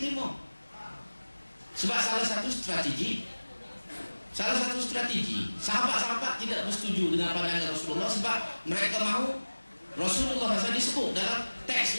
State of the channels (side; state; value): both; inverted; correlation -1.00